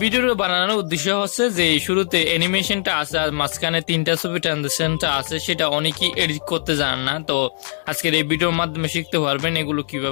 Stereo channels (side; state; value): right; silent; digital silence